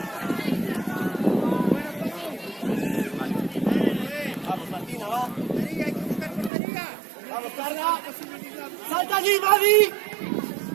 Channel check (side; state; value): left; drops out; at 6.5 s